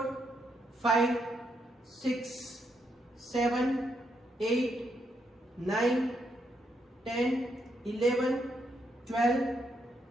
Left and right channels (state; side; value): normal; both; correlation 0.78